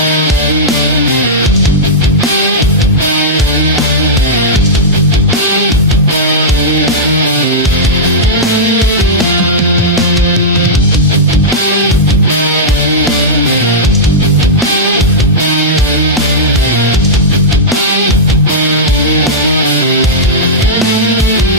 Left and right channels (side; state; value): both; normal; correlation -0.10